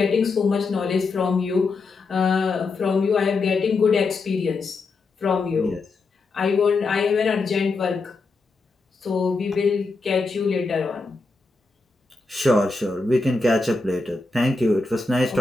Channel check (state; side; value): quieter; right; 3.8 dB